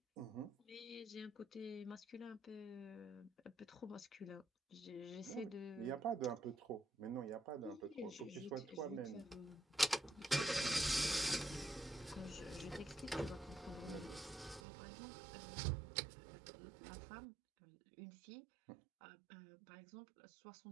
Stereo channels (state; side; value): drops out; left; at 14.6 s